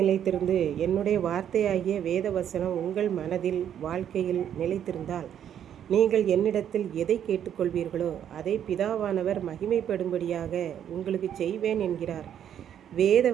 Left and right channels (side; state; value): left; quieter; 9.6 dB